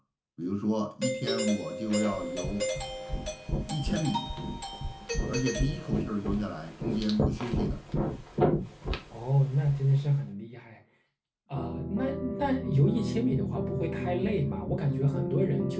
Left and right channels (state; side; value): identical; both; correlation 1.00